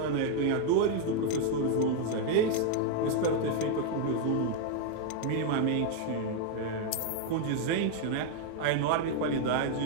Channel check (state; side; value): different; both; correlation 0.00